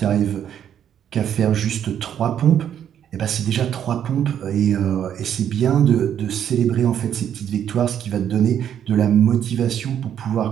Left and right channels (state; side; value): quieter; left; 9.5 dB